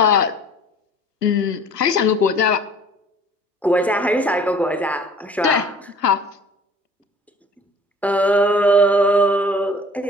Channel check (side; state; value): both; normal; correlation 0.49